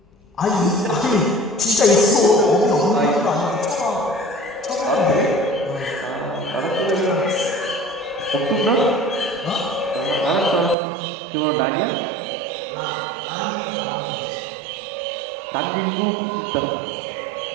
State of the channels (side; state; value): left; drops out; at 10.8 s